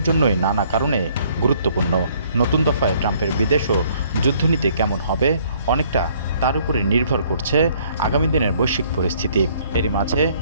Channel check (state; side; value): inverted; both; correlation -0.62